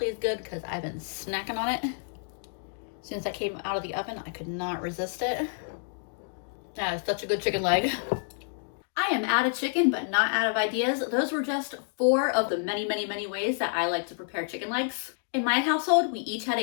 is good because I've been snacking on it. As soon as I came out of the oven, I could not resist it. That is such a good chicken leg. I am out of chicken, but not out of ideas. Those were just 4 of the many, many, many ways that I like to prepare chicken legs. In my household, we each had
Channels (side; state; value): right; silent; digital silence